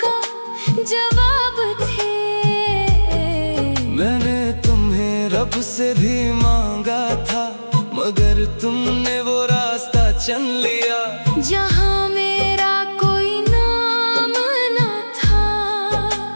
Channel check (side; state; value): both; inverted; correlation -1.00